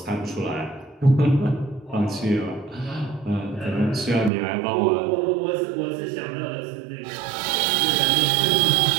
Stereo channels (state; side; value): drops out; left; at 4.3 s